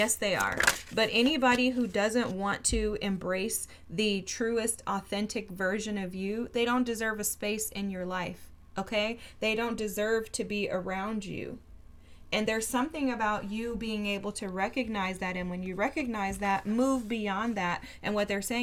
they are. But anybody who doesn't want to embrace the truest, authentic version of you, they don't deserve a space in your life, okay? They don't deserve to be around you. And there's something about you being able to recognize that. And when you recognize that, move beyond that. And what they're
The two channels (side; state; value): both; identical; correlation 1.00